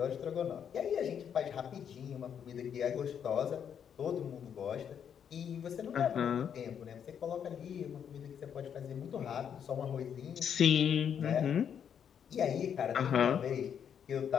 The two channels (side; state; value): right; quieter; 8.2 dB